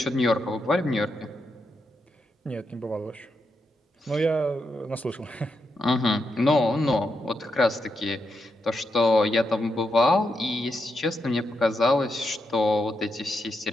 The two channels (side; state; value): both; normal; correlation 0.83